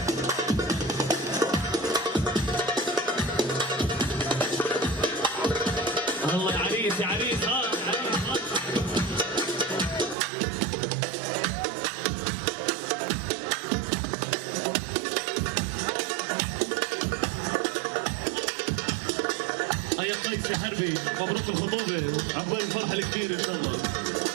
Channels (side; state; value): left; drops out; at 10.2 s